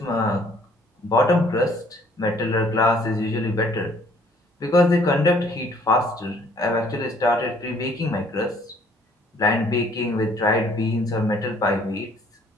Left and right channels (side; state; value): both; normal; correlation 0.60